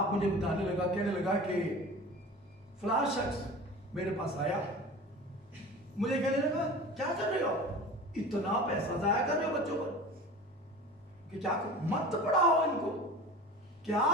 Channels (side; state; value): both; normal; correlation 0.36